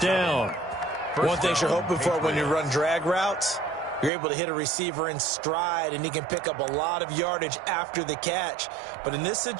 down. One thing you're hoping for when you run drag routes, you're able to hit a receiver in stride, and he can pick up a lot of yardage after the catch. But in this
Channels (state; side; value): drops out; left; at 4.1 s